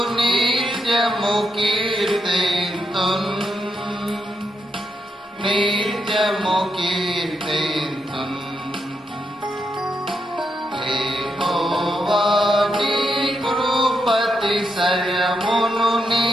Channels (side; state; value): both; normal; correlation 0.81